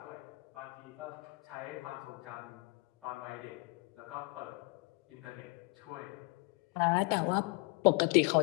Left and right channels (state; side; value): quieter; right; 27.3 dB